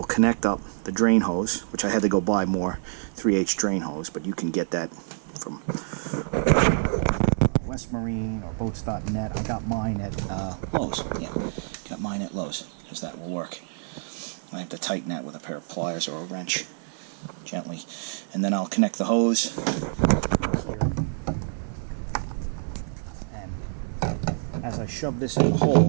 connect up the drain hose, which I had to go buy more 3H drain hose, but you can get that from West Marine or boats.net. I got mine at Lowe's. Yeah, got mine at Lowe's, because that will work. I have to tighten that with a pair of pliers or a wrench gently. And then I'll connect the hose here. And as I shove this in the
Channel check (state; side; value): silent; left; 60 dB below the other